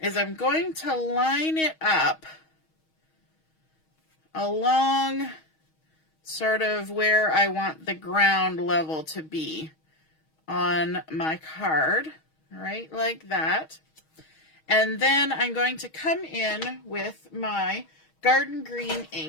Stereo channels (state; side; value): late; right; 6.3 ms